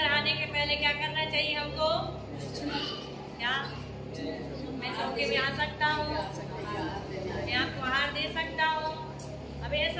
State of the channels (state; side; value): identical; both; correlation 1.00